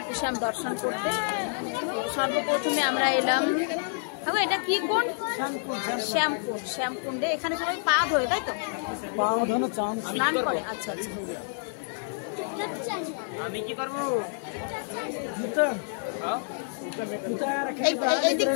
শ্যাম দর্শন করতে। সর্বপ্রথমে আমরা এলাম, এটা কি কুণ্ড? শ্যামকুণ্ডে। এখানে সবাই পা ধোয়, তাই তো? স্নান করে। আচ্ছা আচ্ছা। আমি কি করবো? এই দিক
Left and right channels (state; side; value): silent; right; digital silence